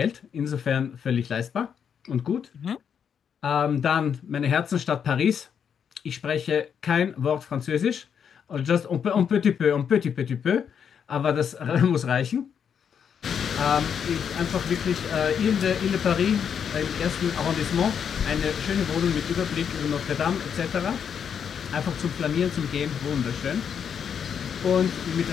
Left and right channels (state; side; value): quieter; right; 7.6 dB